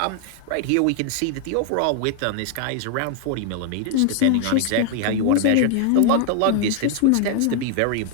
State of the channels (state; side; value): different; both; correlation 0.00